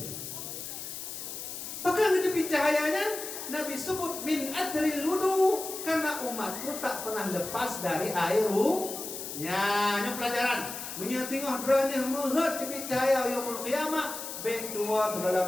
Maka di tepi cahayanya Nabi sebut min athril wudu, karena umatku tak pernah lepas dari air ya, ini pelajaran. Menyatengah berani melihat tepi cahaya yaumul qiyamah. Baik tua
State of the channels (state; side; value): noise; left; hiss, 8 dB below the sound